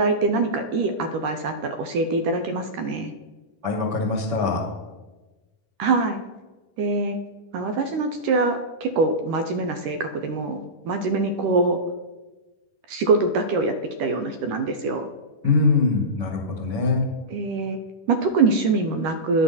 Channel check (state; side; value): late; left; 10 ms